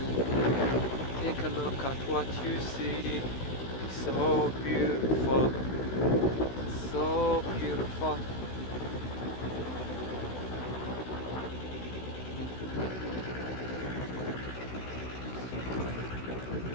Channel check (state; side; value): late; right; 16 ms